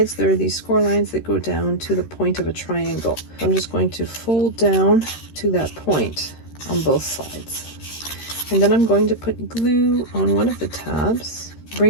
there are these score lines that go down to the point of a triangle. So I'm just going to fold down to that point on both sides. And then I'm going to put glue on one of the tabs,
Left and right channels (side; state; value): right; late; 13 ms